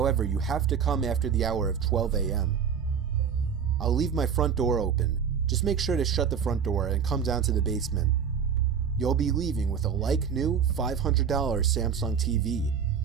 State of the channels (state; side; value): quieter; left; 7.2 dB